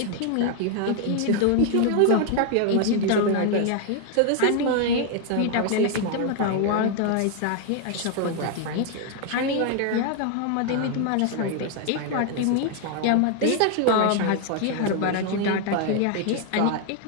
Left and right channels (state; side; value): different; both; correlation 0.00